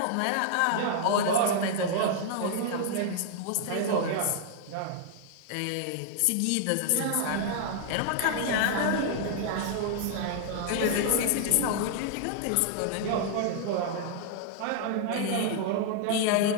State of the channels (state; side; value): different; both; correlation 0.00